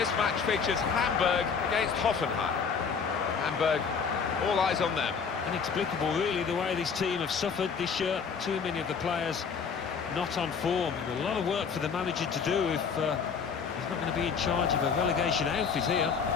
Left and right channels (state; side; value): quieter; right; 6.0 dB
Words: match features Hamburg against Hoffenheim. Hamburg, all eyes on them. Inexplicable really the way this team have suffered this year. Too many of the players not on form. A lot of work for the manager to do if he's not going to be in charge of a relegation outfit here.